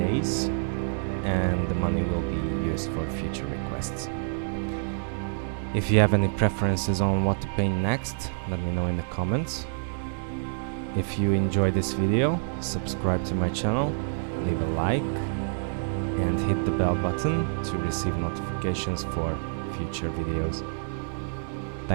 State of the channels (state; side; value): silent; left; digital silence